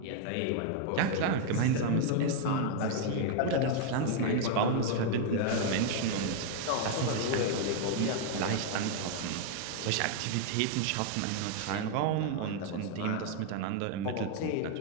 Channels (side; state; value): both; different; correlation 0.00